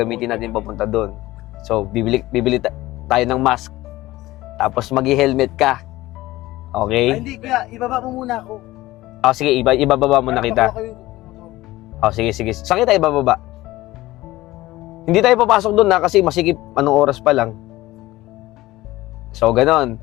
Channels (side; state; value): right; quieter; 17.7 dB